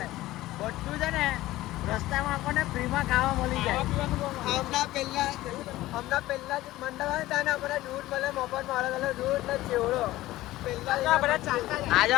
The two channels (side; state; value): right; quieter; 16.7 dB